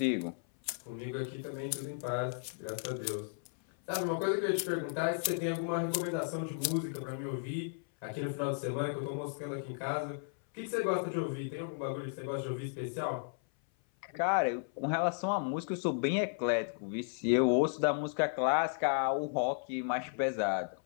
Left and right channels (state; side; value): silent; right; 55 dB below the other